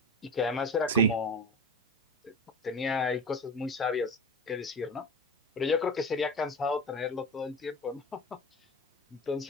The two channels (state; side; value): normal; both; correlation 0.28